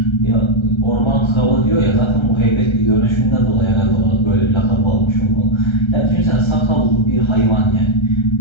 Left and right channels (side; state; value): right; late; 1.3 ms